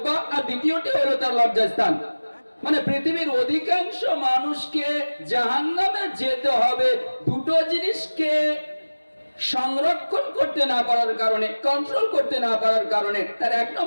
আর দ্বিতীয়টি হলো তার লজ্জাস্থান। মানে পৃথিবীর অধিকাংশ মানুষকে জাহান্নামে যেতে হবে দুটো জিনিসকে সংরক্ষণ করতে না পারার কারণে, কন্ট্রোল করতে না পারার কারণে। তার এক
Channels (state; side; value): inverted; both; correlation -1.00